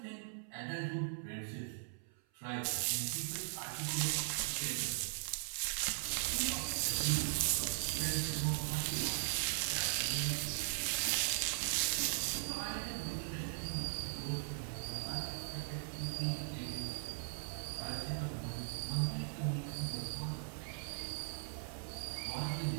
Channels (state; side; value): silent; left; 51 dB below the other